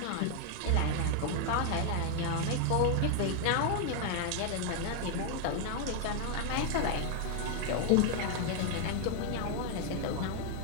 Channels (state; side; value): different; both; correlation 0.00